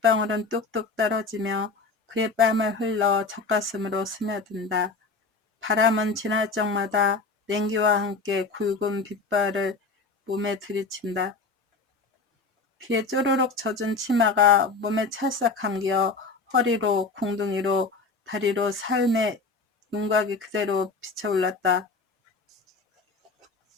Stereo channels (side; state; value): right; quieter; 4.1 dB